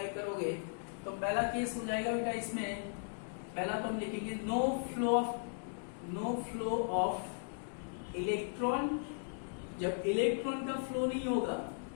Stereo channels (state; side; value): silent; right; digital silence